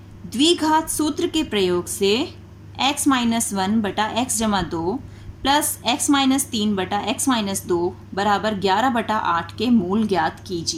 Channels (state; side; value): identical; both; correlation 1.00